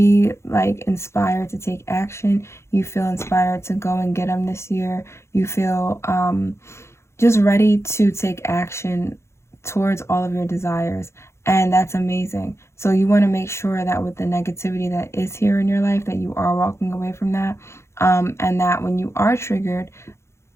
inspired to take action. You feel inspired to go and get them this year. You feel just ready to take action towards all of your desires, and that's amazing. So you want to make sure that with the negativity that is here in your life, that you are walking away from that, and that when you are triggered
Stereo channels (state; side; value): late; right; 0.13 ms